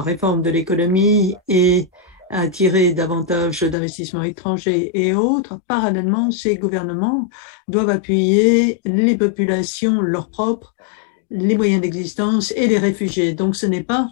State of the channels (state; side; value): drops out; right; at 3.8 s